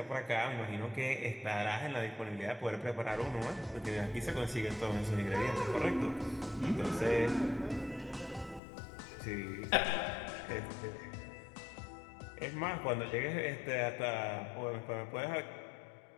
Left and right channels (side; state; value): right; drops out; at 8.6 s